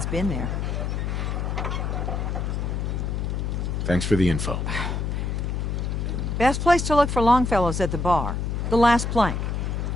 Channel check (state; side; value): noise; left; hum, 1 dB below the sound